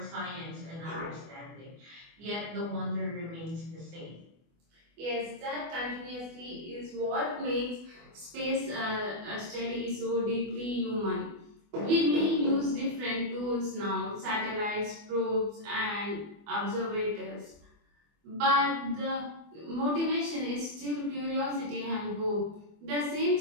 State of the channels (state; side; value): late; left; 24 ms